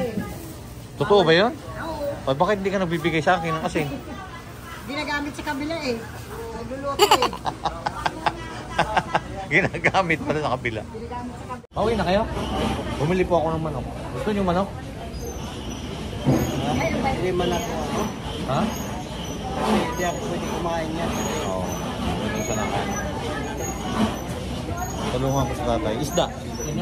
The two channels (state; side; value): identical; both; correlation 1.00